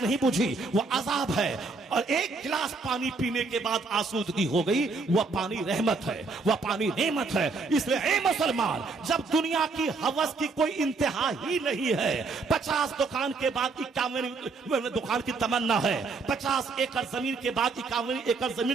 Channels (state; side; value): quieter; left; 4.1 dB